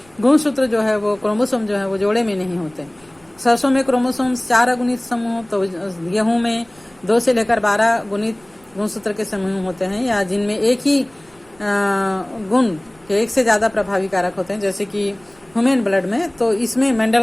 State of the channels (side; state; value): right; noise; rumble, 30 dB below the sound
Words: गुणसूत्र जो है वो क्रोमोसोम जो है वो जोड़े में नहीं होते। सरसों में क्रोमोसोम्स 4 अगुणित समूह, तो गेहूं में 2 से लेकर 12 गुणित गुणसूत्र के समूह होते हैं, या जिनमें एक ही गुण के एक से ज्यादा प्रभावी कारक होते हैं जैसे कि ह्यूमन ब्लड में। तो इसमें